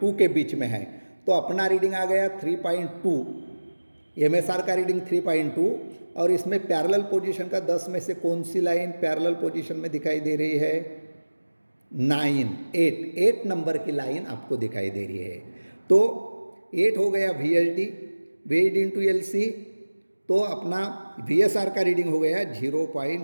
के बीच में है, तो अपना रीडिंग आ गया 3.2। MSR का रीडिंग 3.2 और इसमें पैरेलल पोजीशन का 10 में से कौन सी लाइन पैरेलल पोजीशन में दिखाई दे रही है? 8 नंबर की लाइन आपको दिखाई दे रही है। तो 8 हो गया VSD इंटू LC, तो अपना VSR का रीडिंग हो गया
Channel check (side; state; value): both; inverted; correlation -1.00